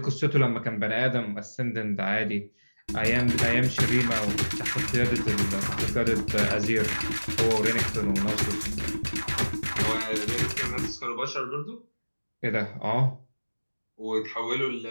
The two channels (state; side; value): inverted; both; correlation -1.00